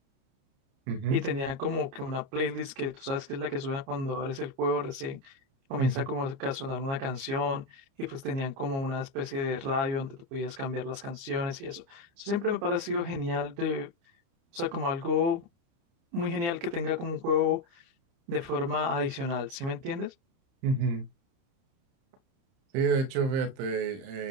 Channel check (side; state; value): left; late; 29 ms